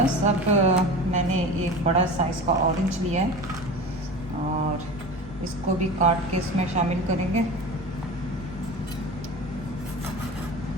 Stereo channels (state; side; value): normal; both; correlation 0.32